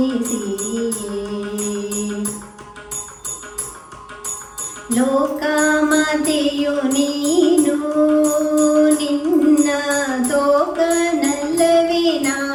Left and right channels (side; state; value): both; identical; correlation 1.00